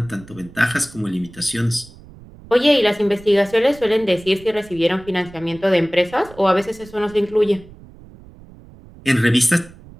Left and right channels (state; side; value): noise; right; rumble, 21 dB below the sound